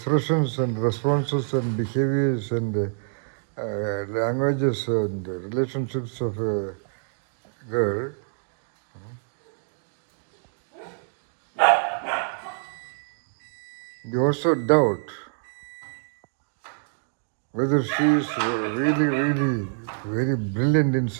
and responses and behaviors and languages and relationships of a girl, you also doubt whether she is really very brilliant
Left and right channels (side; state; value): left; silent; digital silence